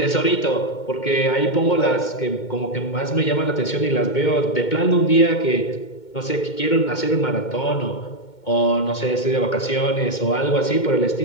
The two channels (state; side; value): late; right; 2.2 ms